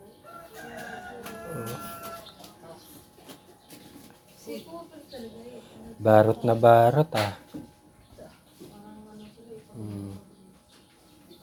Oh. Barot na barot ah.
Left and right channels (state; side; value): identical; both; correlation 1.00